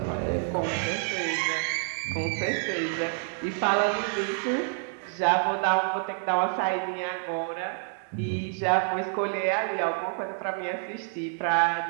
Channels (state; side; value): silent; left; 59 dB below the other